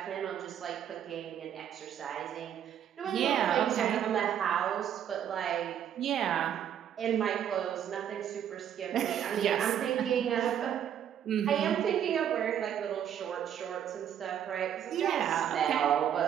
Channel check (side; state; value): left; quieter; 9.6 dB